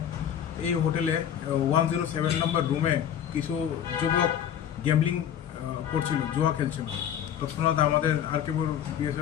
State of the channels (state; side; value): quieter; right; 9.6 dB